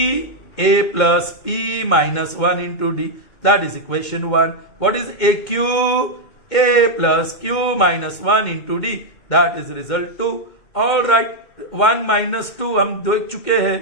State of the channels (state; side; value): late; right; 2.2 ms